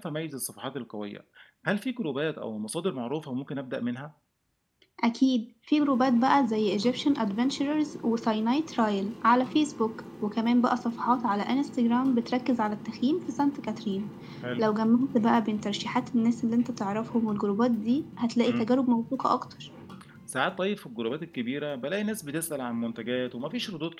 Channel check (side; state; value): both; identical; correlation 1.00